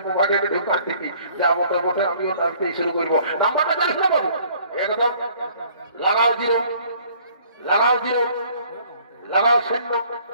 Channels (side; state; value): both; inverted; correlation -0.57